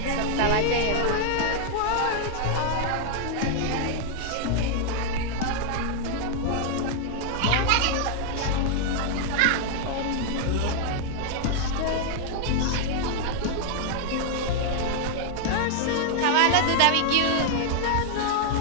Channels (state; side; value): different; both; correlation -0.01